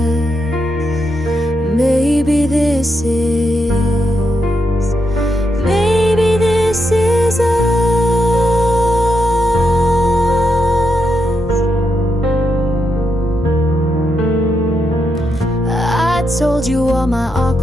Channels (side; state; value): both; normal; correlation 0.82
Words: Maybe this is told you all my